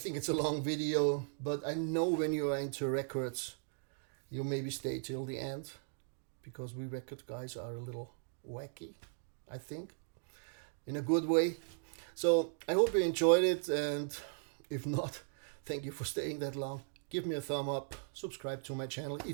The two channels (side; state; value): left; silent; digital silence